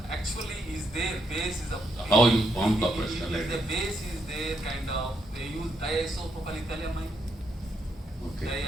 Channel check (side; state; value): both; normal; correlation 0.78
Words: Actually, is there base is a How you form copper acetylide? The base is there kind of. They use diisopropylethylamine. Okay.